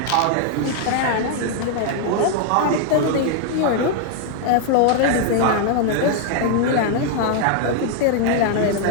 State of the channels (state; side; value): different; both; correlation 0.00